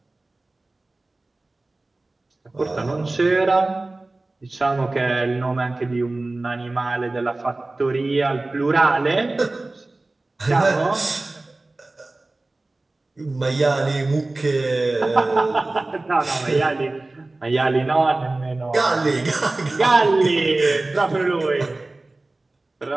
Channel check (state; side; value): quieter; left; 3.0 dB